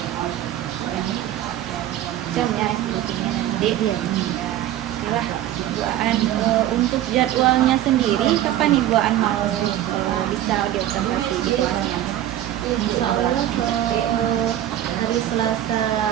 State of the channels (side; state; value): left; quieter; 12.6 dB